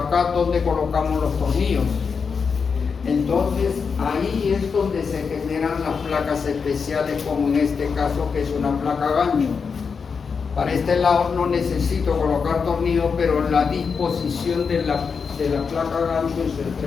donde colocamos los tornillos. Entonces ahí es donde se generan las placas especiales, como en este caso que es una placa gancho. Para este lado no necesito colocar tornillos, pero la disposición de la placa gancho en su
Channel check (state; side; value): quieter; right; 5.6 dB